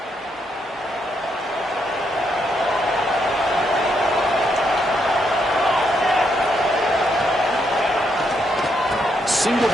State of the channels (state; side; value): normal; both; correlation 0.77